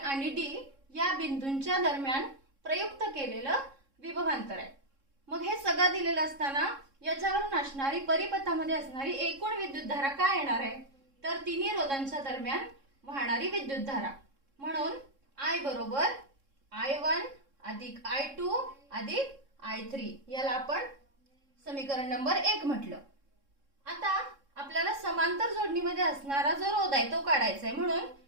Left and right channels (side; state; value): left; late; 3.7 ms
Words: D या बिंदूंच्या दरम्यान प्रयुक्त केलेलं विभवांतर आहे. मग हे सगळं दिलेलं असताना याच्यावरून असणारी परिपथामध्ये असणारी एकूण विद्युतधारा काय येणार आहे तर तिन्ही रोधांच्या दरम्यान वाहणारी विद्युतधारा म्हणून I बरोबर I1 अधिक I2 अधिक I3 याला आपण समीकरण नंबर 1 म्हटलं. आता आपल्याला समांतर जोडणीमध्ये असणारा जो रोध आहे तो काढायचा आहे. म्हणून